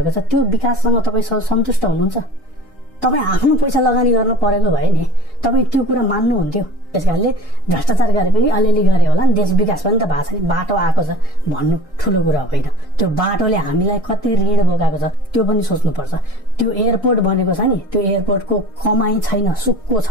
छ, त्यो विकाससँग तपाईँ सन्तुष्ट हुनुहुन्छ? तपाईँ आफ्नो पैसा लगानी गर्नु परेको भए नि तपाईँ त्यो कुरा मान्नुहुन्थ्यो। त्यसकारणले भ्रष्टाचार गरे पनि अलिअलि गरे होला नि, देश विकास पनि त भएको छ नि, बाटो आएको छ भन्नु ठुलो कुरा होइन। त्यो बाटोले हामीलाई कति ऋण बोकाएको छ त्यो पनि सोच्नुपर्छ। त्यो एयरपोर्ट बनेको छ नि, त्यो एयरपोर्टको कमाई छैन, सुक्को छ।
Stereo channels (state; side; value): normal; both; correlation 0.26